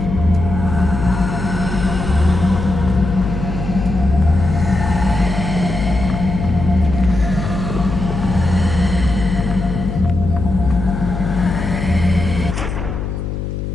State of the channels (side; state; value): left; noise; hum, 5 dB below the sound